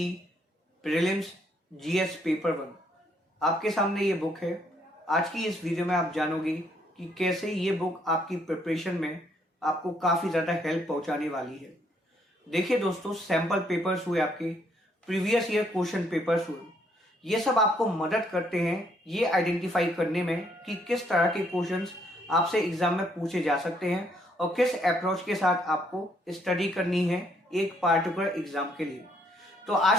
prelims GS paper 1 आपके सामने ये बुक है। आज की इस वीडियो में आप जानोगे कि कैसे ये बुक आपकी प्रिपरेशन में आपको काफ़ी ज़्यादा हेल्प पहुंचाने वाली है। देखिए दोस्तों, सैम्पल पेपर्स हुए, आपके प्रीवियस ईयर क्वेश्चन पेपर्स हुए, ये सब आपको मदद करते हैं ये आइडेंटिफाई करने में कि किस तरह के क्वेश्चंस आपसे एग्जाम में पूछे जा सकते हैं और किस अप्रोच के साथ आपको स्टडी करनी है एक पार्टिकुलर एग्जाम के लिए। तो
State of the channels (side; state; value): both; normal; correlation 0.69